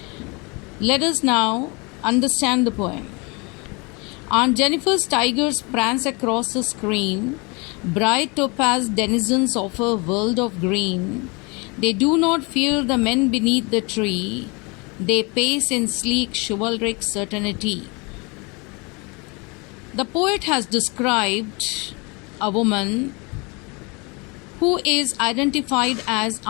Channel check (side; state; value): right; quieter; 29.1 dB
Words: Let us now understand the poem. Aunt Jennifer's tigers prance across the screen, bright topaz denizens of a world of green. They do not fear the men beneath the tree, they pace in sleek chivalric certainty. The poet has described a woman who is identified as